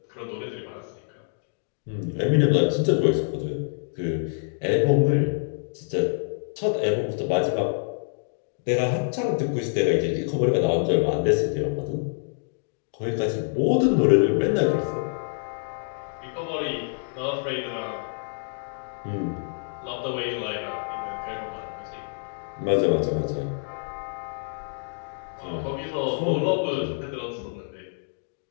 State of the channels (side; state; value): right; silent; digital silence